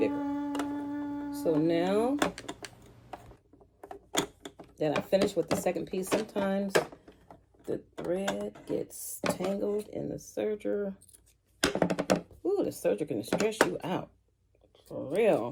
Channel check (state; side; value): identical; both; correlation 1.00